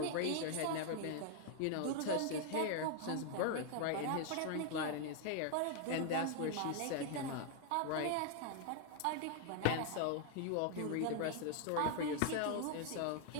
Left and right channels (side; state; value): both; different; correlation 0.00